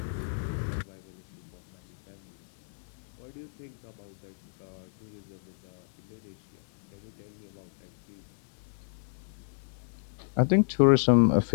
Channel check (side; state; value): right; silent; digital silence